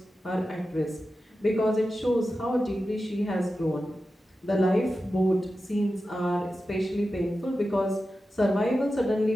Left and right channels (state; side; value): normal; both; correlation 0.92